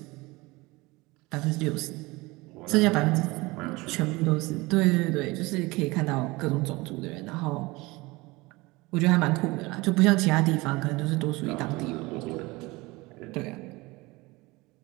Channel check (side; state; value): left; quieter; 22.6 dB